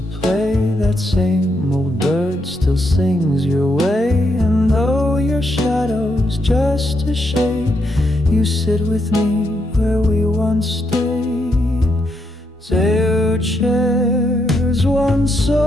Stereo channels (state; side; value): normal; both; correlation 0.79